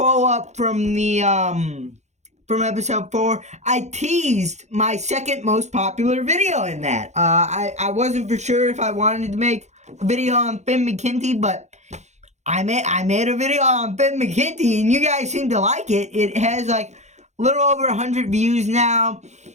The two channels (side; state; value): left; late; 0.33 ms